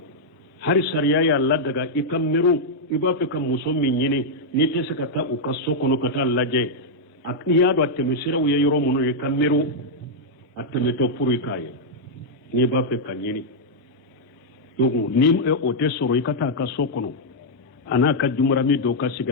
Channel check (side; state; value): both; normal; correlation -0.04